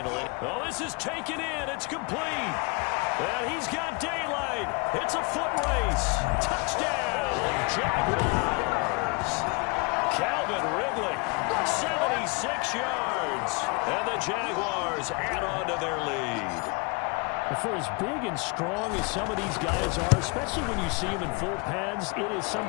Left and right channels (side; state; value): right; quieter; 30.4 dB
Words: it. Oh, this is taken in. It's complete. And he's got daylight. It's a foot race. Touchdown, Jaguars. Calvin Ridley, 76 yards. And the Jaguars add on to their lead. For as big and strong as some of these guys are, especially when you see them in full pads, it is